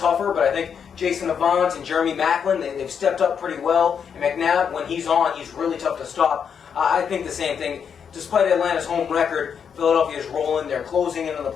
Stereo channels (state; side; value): quieter; right; 7.2 dB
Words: but I think Jason Avant and Jeremy Maclin, they've stepped up pretty well. And McNabb, when he's on, he's really tough to stop. I think the same thing. Despite Atlanta's home record, Philadelphia is rolling. They're closing into the